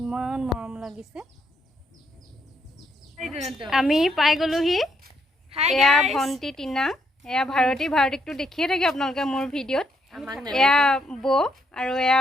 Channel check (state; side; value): normal; both; correlation 0.75